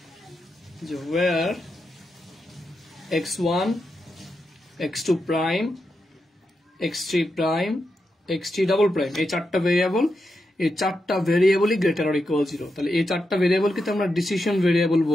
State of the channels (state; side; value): normal; both; correlation 0.86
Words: যে where x1 x2 prime x3 prime x3 double prime এই চারটা ভেরিয়েবলই গ্রেটার অর ইকুয়াল 0। তাহলে এই চারটা ভেরিয়েবলকে তো আমরা ডিসিশন ভেরিয়েবল